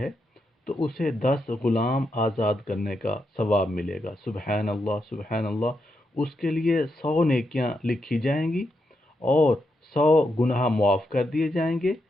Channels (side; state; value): both; normal; correlation 0.83